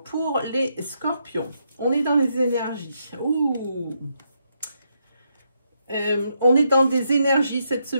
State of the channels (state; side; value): inverted; both; correlation -0.79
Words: pour les Scorpions, on est dans les énergies. Ouh. On est dans des énergies cette